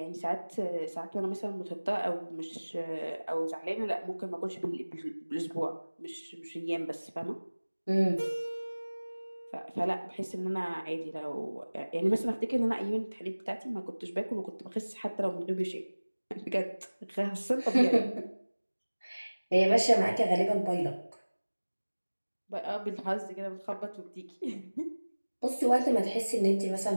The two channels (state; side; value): inverted; both; correlation -1.00